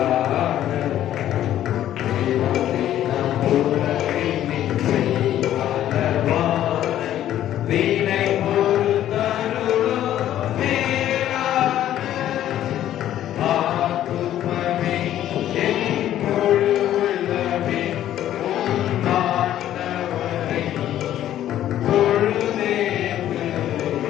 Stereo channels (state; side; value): quieter; right; 12.1 dB